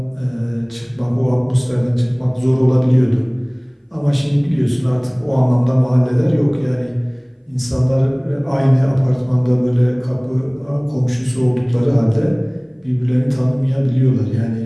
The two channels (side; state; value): both; identical; correlation 1.00